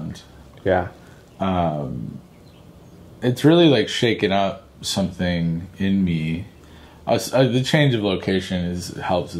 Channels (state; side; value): identical; both; correlation 1.00